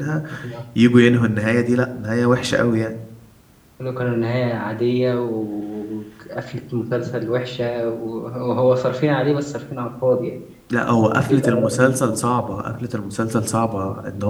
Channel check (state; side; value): identical; both; correlation 1.00